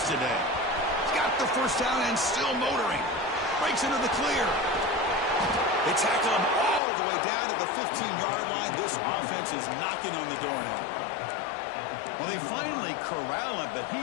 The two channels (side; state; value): right; drops out; at 6.8 s